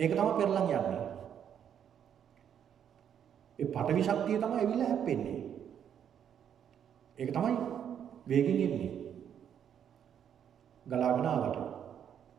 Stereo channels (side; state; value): left; quieter; 8.9 dB